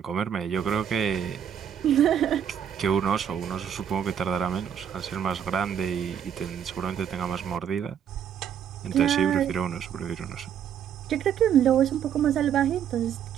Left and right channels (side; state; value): left; quieter; 8.7 dB